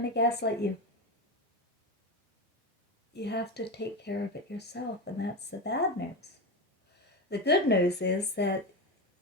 to gaslight you. You have to take care of it yourself, and that's the bad news. The good news is that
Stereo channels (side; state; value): both; normal; correlation 0.19